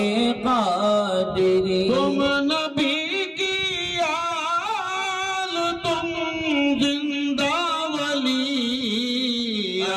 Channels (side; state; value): both; identical; correlation 1.00